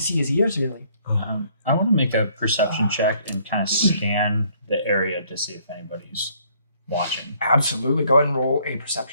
his ears really. I want to make a perception check and kind of scan the area to see if anybody's watching. Absolutely. Go ahead and roll a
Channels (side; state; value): both; inverted; correlation -0.64